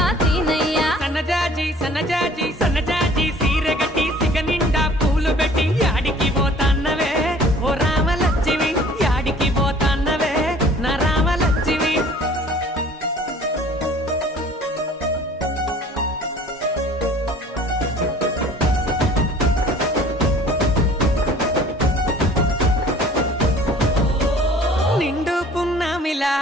సీనయ్య సన్నజాజి సన్నజాజి సన్నజాజి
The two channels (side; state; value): both; normal; correlation 0.51